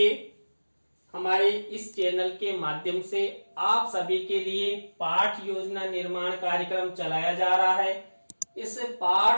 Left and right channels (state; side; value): inverted; both; correlation -1.00